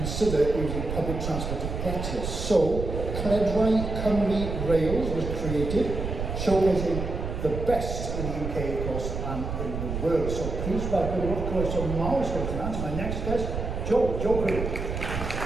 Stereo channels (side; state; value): right; noise; rumble, 4 dB below the sound